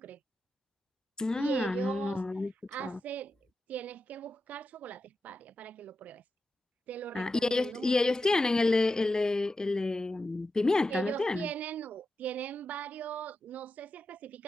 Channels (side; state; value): both; normal; correlation 0.89